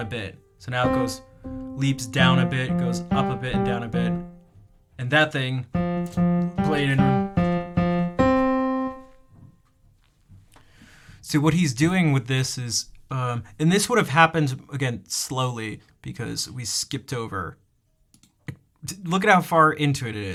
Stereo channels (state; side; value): identical; both; correlation 1.00